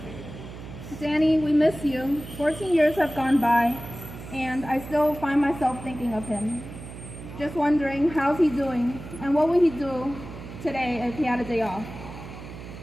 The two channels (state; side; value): noise; right; hum, 13 dB below the sound